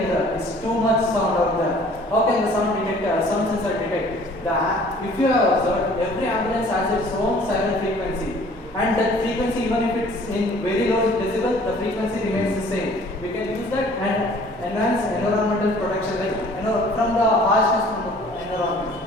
it's too much sound out there. How can the sound sensor detect? If you have observed, every ambulance has its own siren frequency, and that frequency, even if it's in very low decibel, the frequency remains the same. We can use that and enhance environmental protection, like from the harshness from the environment.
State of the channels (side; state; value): left; noise; hum, 25 dB below the sound